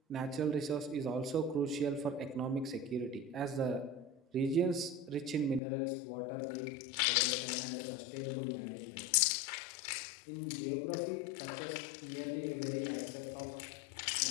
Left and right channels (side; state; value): right; drops out; at 5.6 s